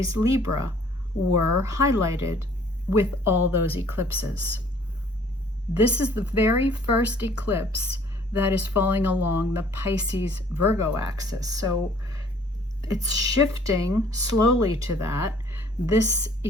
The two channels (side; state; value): both; normal; correlation 0.57